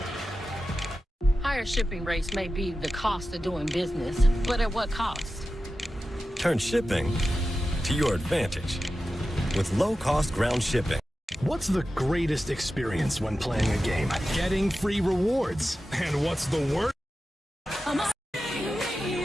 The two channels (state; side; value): normal; both; correlation 0.93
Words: Higher shipping rates may be the cost of doing business, but at what cost? Turn shipping to your advantage with low-cost ground shipping. What's the greatest experience when playing a game? Getting free rewards. And what's the worst?